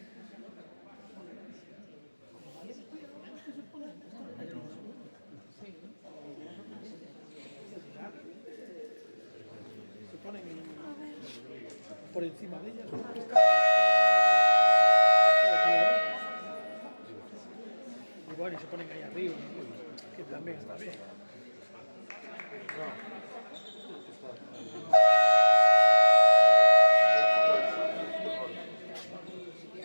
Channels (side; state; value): both; inverted; correlation -1.00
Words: por encima de ellas. Y bueno, y se ponen ahí arriba, que también está bien.